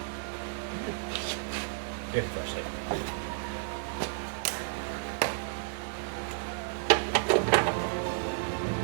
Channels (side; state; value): left; silent; digital silence